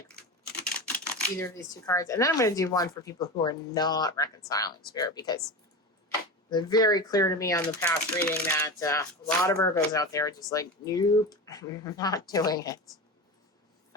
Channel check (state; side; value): normal; both; correlation 0.25